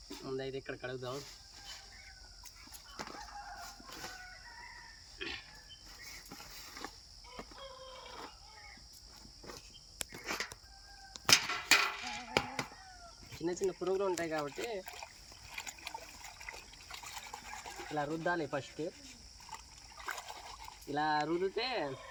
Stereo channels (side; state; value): both; identical; correlation 1.00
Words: ముందైతే ఇక్కడ కడుగుదాం. చిన్న చిన్న పురుగులు ఉంటాయి కాబట్టి ఇలా రుద్దాలి. ఫస్ట్ ఇలా రుద్దితే